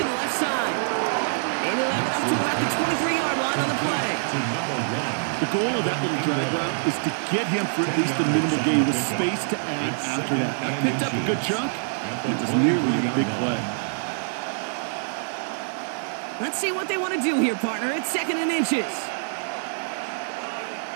the left side. And he'll have it up to about the 23-yard line on the play. The goal of that little drag route is to get him for at least a minimal gain with space to add after that. That picked up a good chunk. It was nearly a big play. Let's see what they want to do here, partner. It's 2nd and inches.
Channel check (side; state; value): left; silent; digital silence